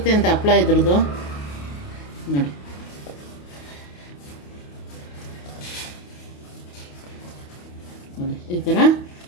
ಅಂತ ಹಪ್ಳ ಇದ್ರದ್ದು ನೋಡಿ. ನೋಡಿ ಈ ಥರ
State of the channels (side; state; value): right; late; 28 ms